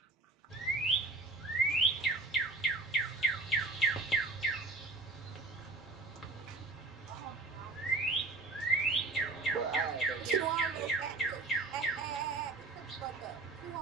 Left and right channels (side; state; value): left; quieter; 3.4 dB